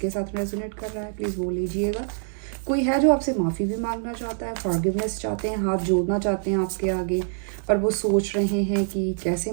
साथ रेजोनेट कर रहा है प्लीज़ बोल लीजिएगा। कोई है जो आपसे माफ़ी भी मांगना चाहता है, फॉरगिवनेस चाहते हैं, हाथ जोड़ना चाहते हैं आपके आगे, पर वो सोच रहे हैं कि कैसे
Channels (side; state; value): left; silent; digital silence